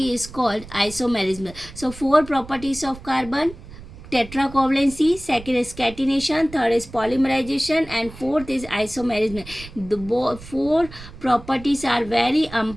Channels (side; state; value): right; noise; rumble, 16 dB below the sound